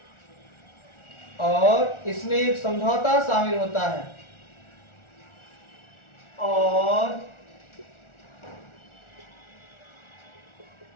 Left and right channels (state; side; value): late; right; 1.4 ms